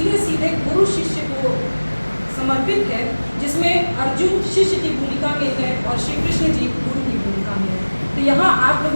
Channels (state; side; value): inverted; both; correlation -1.00